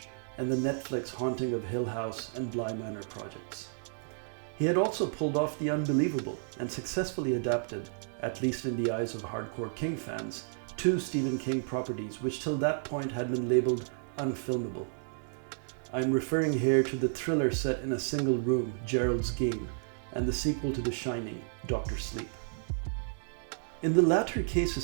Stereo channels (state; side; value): silent; left; digital silence